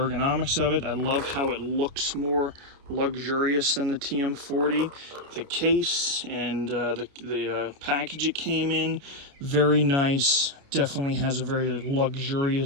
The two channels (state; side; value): late; left; 29 ms